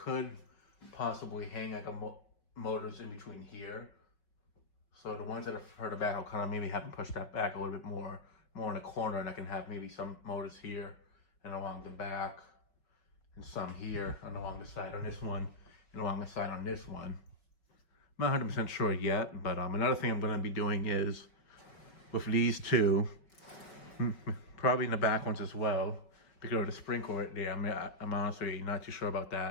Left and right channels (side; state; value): right; late; 5.6 ms